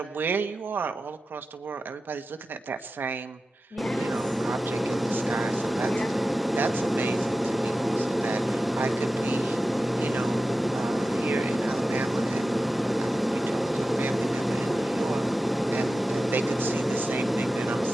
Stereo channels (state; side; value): normal; both; correlation 0.93